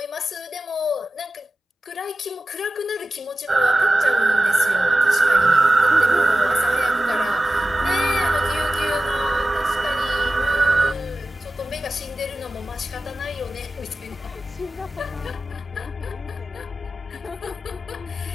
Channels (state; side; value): normal; both; correlation 0.94